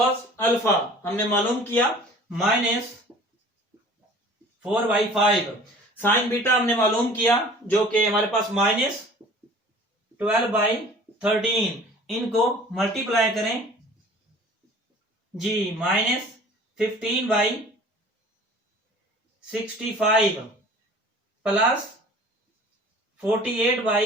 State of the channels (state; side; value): normal; both; correlation 0.47